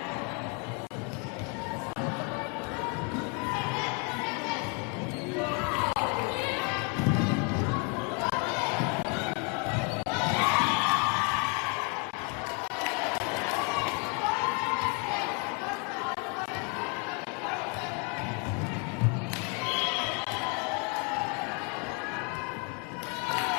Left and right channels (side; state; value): right; quieter; 34.2 dB